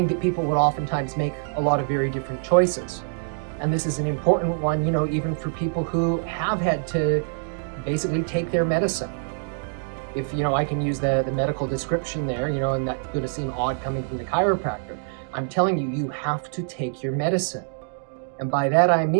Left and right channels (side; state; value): left; silent; digital silence